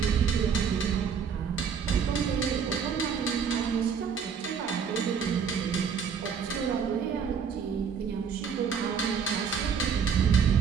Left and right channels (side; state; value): left; quieter; 6.7 dB